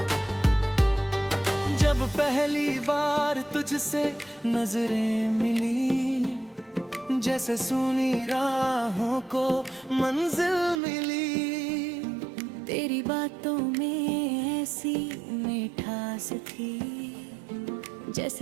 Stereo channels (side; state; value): left; drops out; at 10.8 s